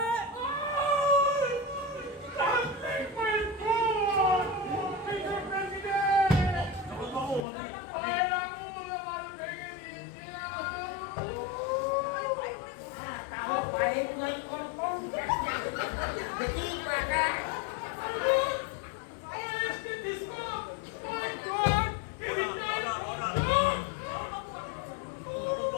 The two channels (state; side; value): drops out; right; at 7.5 s